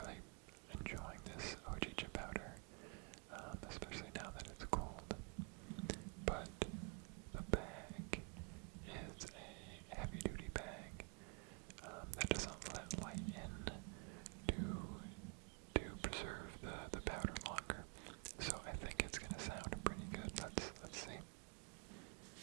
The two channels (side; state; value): left; quieter; 34.3 dB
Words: enjoying this hojicha powder, especially now that it's cold. But the bag is a heavy-duty bag that doesn't let light in to preserve the powder longer. So I think it's gonna sound pretty good. Let's see.